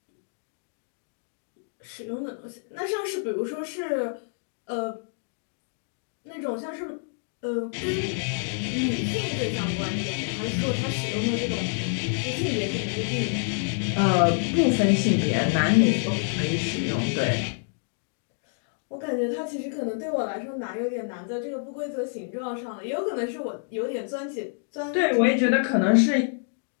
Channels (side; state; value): right; silent; digital silence